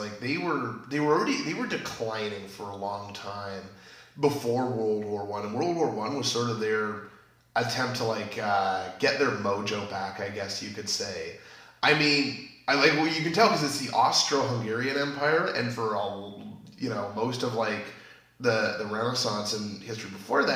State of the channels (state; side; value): identical; both; correlation 1.00